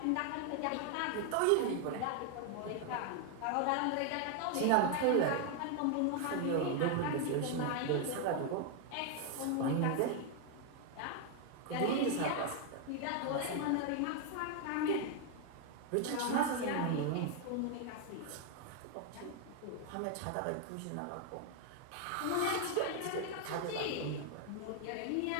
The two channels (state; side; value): different; both; correlation 0.01